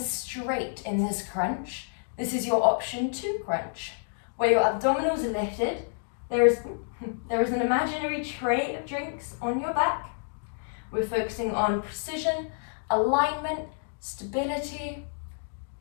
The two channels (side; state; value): right; silent; digital silence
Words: in this crunch. This is your option 2 crunch, where your abdominals are lifted. There is an imaginary tray of drinks on your back. We're focusing on precision, alignment, stability.